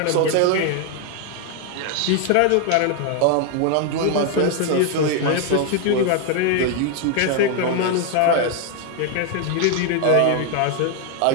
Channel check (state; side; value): different; both; correlation 0.01